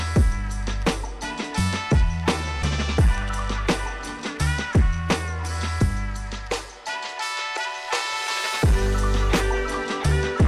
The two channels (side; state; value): both; identical; correlation 1.00